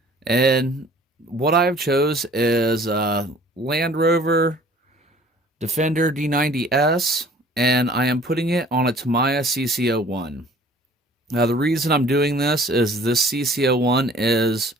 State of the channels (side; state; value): both; normal; correlation 0.51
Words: And what I've chose is Land Rover Defender D90S, and I am putting it on a Tamiya CC-01. Now the reason I'm doing this is this CC-01 is